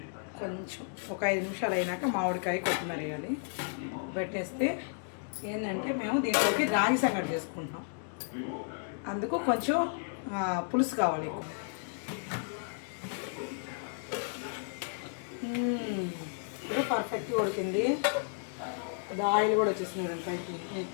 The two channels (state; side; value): silent; right; digital silence